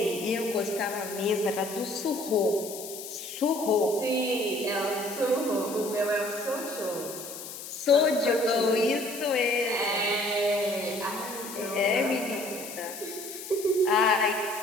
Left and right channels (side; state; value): left; noise; hiss, 11 dB below the sound